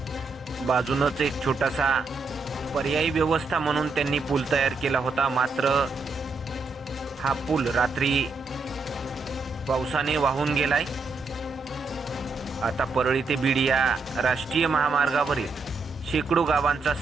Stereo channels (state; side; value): quieter; left; 4.0 dB